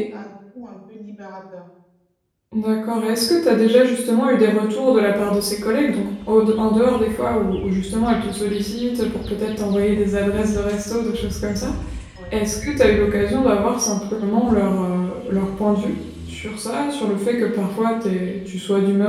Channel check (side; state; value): both; identical; correlation 1.00